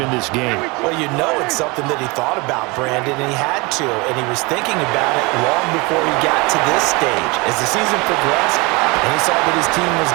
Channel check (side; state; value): left; quieter; 26.4 dB